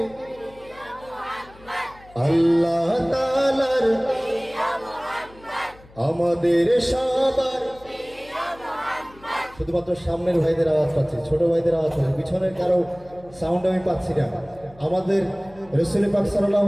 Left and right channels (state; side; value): noise; left; hum, 24 dB below the sound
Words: আল্লাহ তাআলার আমাদের সবার শুধুমাত্র সামনের ভাইদের আওয়াজ পাচ্ছি, ছোট ভাইদের আওয়াজ পাচ্ছি, পিছনের কারো সাউন্ড আমি পাচ্ছি না। আমাদের রাসূল পাক সাল্লাল্লাহু